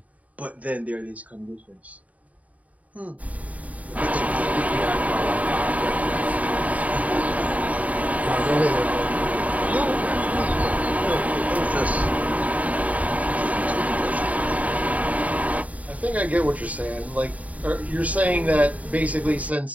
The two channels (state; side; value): late; left; 0.070 ms